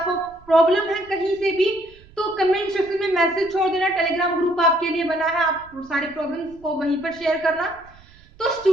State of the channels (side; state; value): right; noise; rumble, 25 dB below the sound